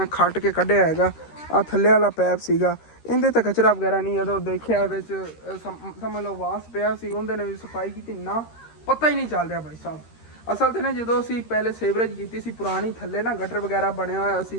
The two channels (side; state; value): right; late; 13 ms